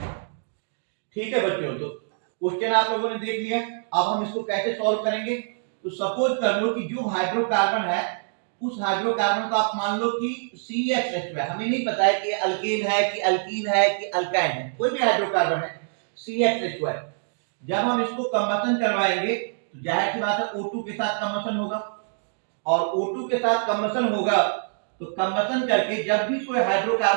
ठीक है बच्चों, तो क्वेश्चन आप लोगों ने देख लिया। अब हम इसको कैसे सॉल्व करेंगे? तो सपोज कर लो कि जो हाइड्रोकार्बन है उस हाइड्रोकार्बन को आप मान लो कि CHH है। हमें नहीं पता है कि अल्केन है कि अल्कीन है कि अल्काइन है, कोई भी हाइड्रोकार्बन है CHH है। जब हम इसको कंबशन करवाएंगे तो जाहिर सी बात है O2 के साथ कंबशन होगा और O2 के साथ कंबशन होगा तो कंबशन करके जब भी कोई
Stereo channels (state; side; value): silent; left; digital silence